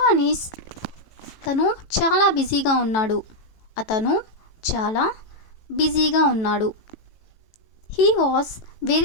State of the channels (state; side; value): late; right; 18 ms